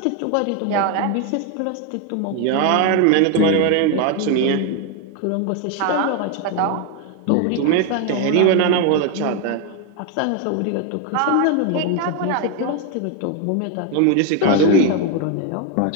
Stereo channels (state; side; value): different; both; correlation 0.01